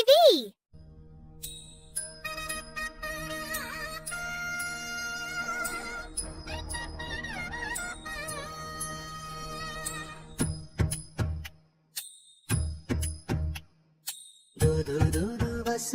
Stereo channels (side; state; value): both; identical; correlation 1.00